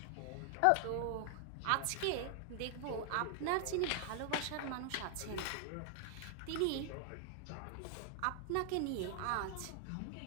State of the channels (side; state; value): both; different; correlation 0.00